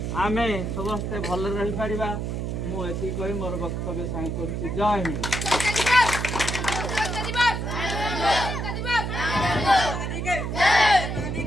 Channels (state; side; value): noise; right; hum, 3 dB below the sound